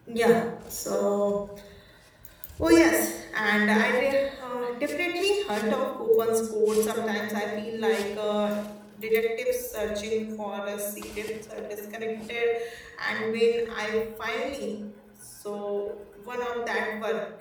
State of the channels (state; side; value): identical; both; correlation 1.00